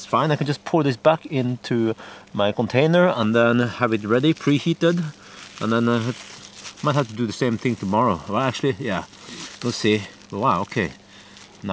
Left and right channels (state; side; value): identical; both; correlation 1.00